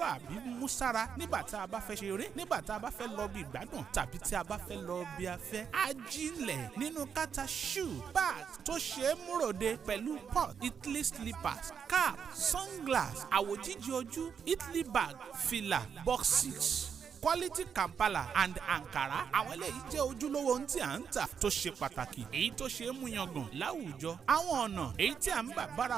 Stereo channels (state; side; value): quieter; left; 7.1 dB